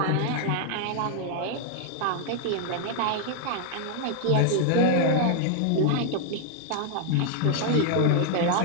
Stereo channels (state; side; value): different; both; correlation 0.00